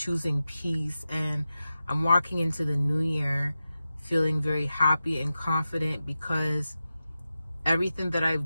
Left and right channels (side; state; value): both; inverted; correlation -0.92